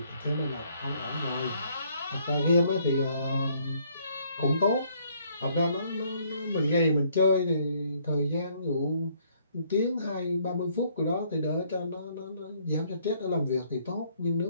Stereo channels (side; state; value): both; inverted; correlation -0.66